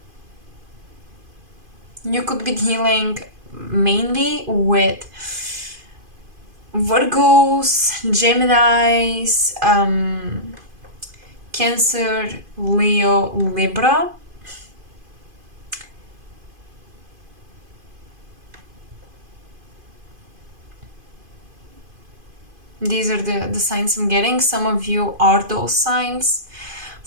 you could be dealing mainly with Virgos, Geminis, Cancer, Leo, Libra. These are the signs I'm getting. Some of you are those signs.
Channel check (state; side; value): late; left; 2.5 ms